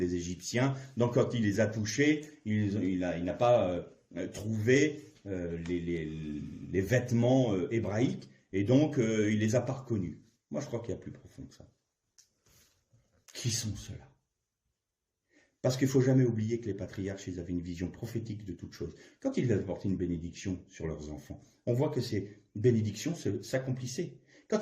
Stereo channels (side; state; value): both; identical; correlation 1.00